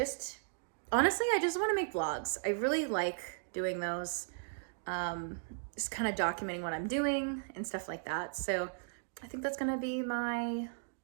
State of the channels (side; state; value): left; silent; digital silence